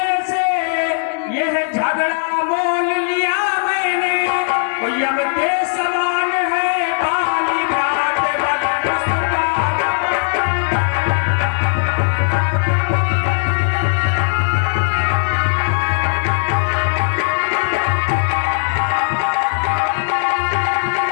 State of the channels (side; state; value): right; silent; 68 dB below the other